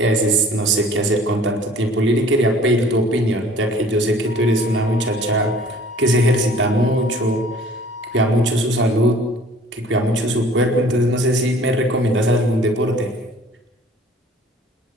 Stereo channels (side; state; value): both; normal; correlation 0.51